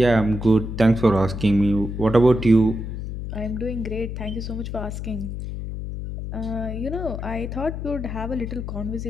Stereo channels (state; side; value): noise; left; hum, 6 dB below the sound